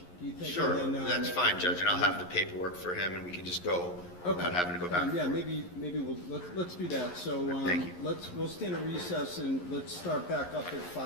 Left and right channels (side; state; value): right; late; 11 ms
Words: Do you think? Sure, And then, that's fine, Judge, and I'll have the paperwork for him, and we can just go without having to go back. Yeah, maybe let's do that. So Thank you. we'll stand a recess and let's start back up at